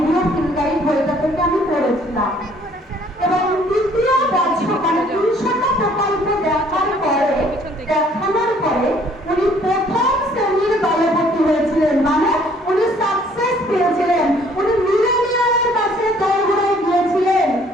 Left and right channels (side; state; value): both; normal; correlation 0.60